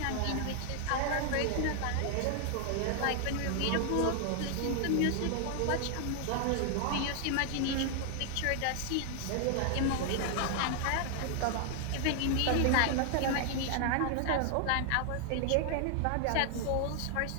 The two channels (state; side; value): different; both; correlation 0.00